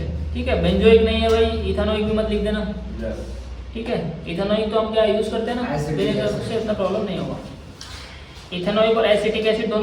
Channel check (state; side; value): identical; both; correlation 1.00